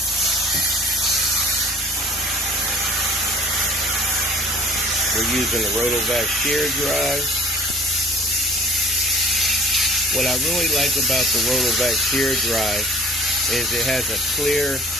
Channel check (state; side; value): normal; both; correlation 0.50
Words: We're using the Rotovac shear drive. What I really like about the Rotovac shear drive is it has a clear